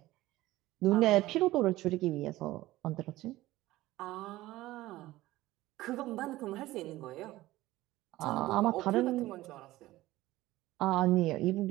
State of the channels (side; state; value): left; quieter; 17.1 dB